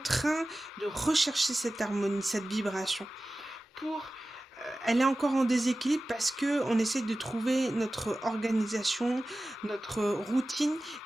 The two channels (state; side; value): normal; both; correlation 0.95